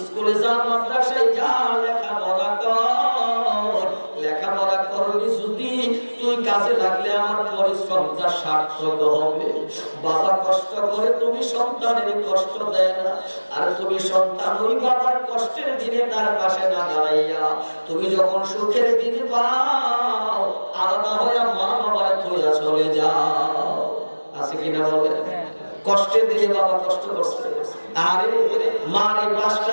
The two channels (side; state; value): both; inverted; correlation -1.00